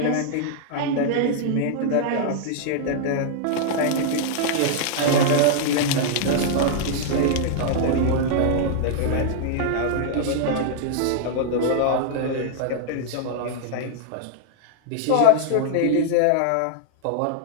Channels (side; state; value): both; different; correlation -0.01